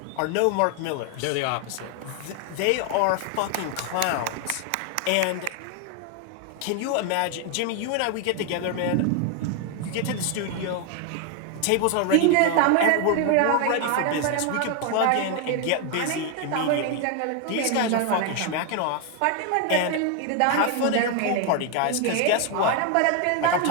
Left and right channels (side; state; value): both; different; correlation 0.01